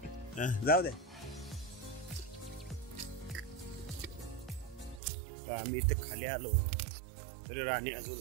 जाऊ दे. आम्ही इथे खाली आलो तरी राणी अजून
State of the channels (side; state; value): left; drops out; at 5.0 s